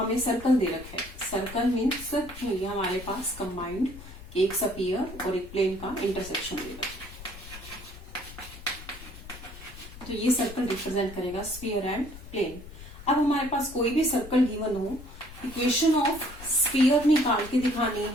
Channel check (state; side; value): noise; left; rumble, 15 dB below the sound